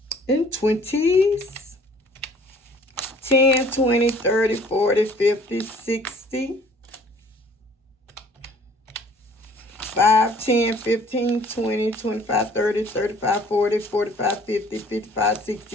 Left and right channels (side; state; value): both; normal; correlation 0.54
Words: In 20s. 10, 20, 30, 40, 50, 60. 5, 10, 15, 20, 25, 30, 35, 40, 45, 50, 55,